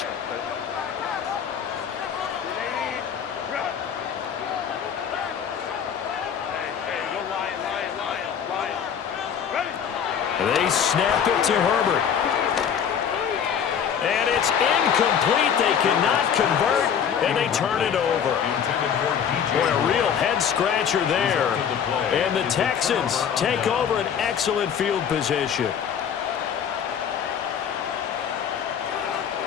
They snap it to Herbert. And it's incomplete. They cannot convert, and they turn it over. Boy, a real head-scratcher there. And the Texans take over an excellent field position.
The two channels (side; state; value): right; quieter; 8.0 dB